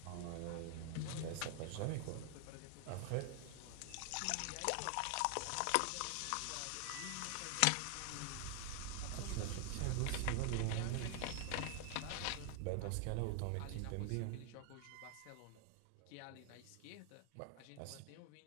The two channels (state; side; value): different; both; correlation 0.00